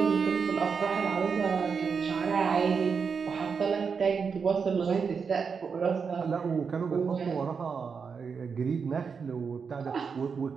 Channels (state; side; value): quieter; left; 5.8 dB